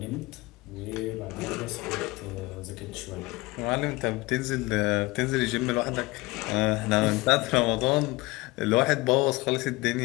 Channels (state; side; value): quieter; right; 22.2 dB